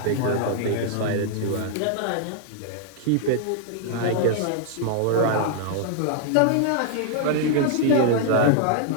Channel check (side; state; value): both; different; correlation 0.00